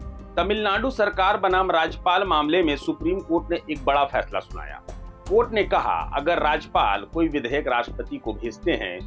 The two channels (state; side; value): identical; both; correlation 1.00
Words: तमिलनाडु सरकार बनाम राज्यपाल मामले में सुप्रीम कोर्ट ने एक बड़ा फैसला सुनाया। कोर्ट ने कहा, अगर राज्यपाल कोई विधेयक राष्ट्रपति को भेजते